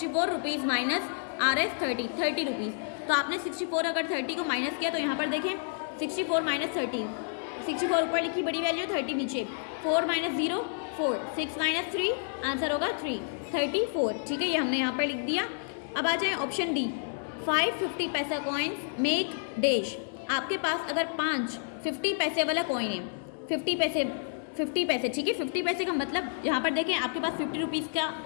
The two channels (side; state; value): right; silent; digital silence